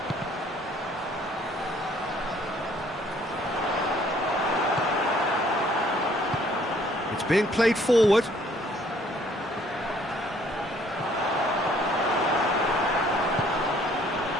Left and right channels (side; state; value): both; normal; correlation 0.61